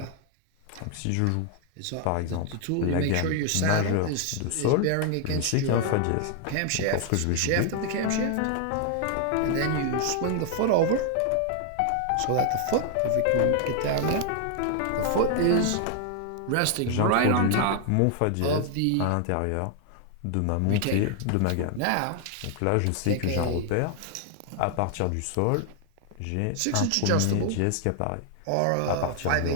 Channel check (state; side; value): different; both; correlation 0.00